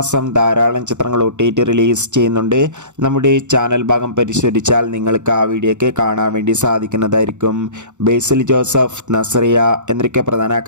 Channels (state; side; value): late; left; 0.84 ms